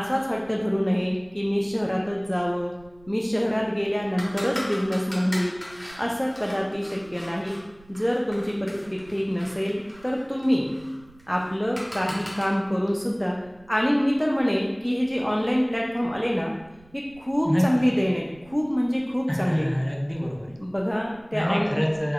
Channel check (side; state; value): right; noise; rumble, 26 dB below the sound